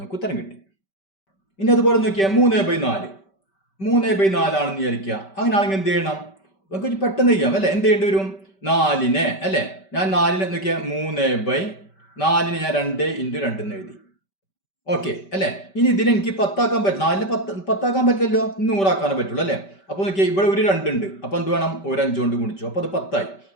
ഉത്തരം കിട്ടി. ഇനി അതുപോലെ നോക്കിയാൽ 3/4 ആണെന്ന് വിചാരിക്കുക. അങ്ങനെയാണെങ്കിൽ എന്ത് ചെയ്യണം? നമുക്ക് പെട്ടെന്ന് ചെയ്യാം അല്ലേ? എന്ത് ചെയ്യേണ്ടി വരും? 4നെ അല്ലേ? ഞാൻ 4നെ നോക്കിയാൽ 3/4 ഞാൻ 2 × 2 എന്ന് എഴുതി. ഓക്കെ അല്ലേ? ഇനി ഇതിനെ എനിക്ക് 10 ആക്കാൻ പറ്റില്ല. 4നെ 10 ആക്കാൻ പറ്റില്ലല്ലോ. 100 ആക്കാനേ പറ്റുള്ളൂ അല്ലേ? അപ്പോൾ നോക്കിയാൽ ഇവിടെ ഒരു 2 ഉണ്ട്. അപ്പോൾ എന്ത് വേണം? ഒരു 5 കൊണ്ട് ഗുണിച്ചു. അപ്പോൾ അത് 10 ആയി.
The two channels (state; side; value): late; right; 5.2 ms